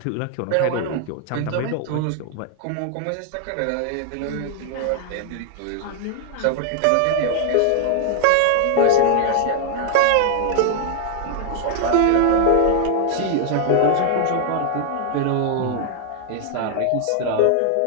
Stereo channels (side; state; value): both; different; correlation 0.00